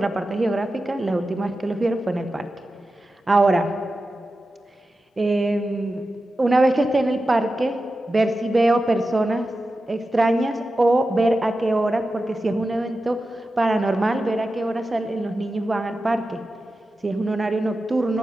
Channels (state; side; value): normal; both; correlation 0.92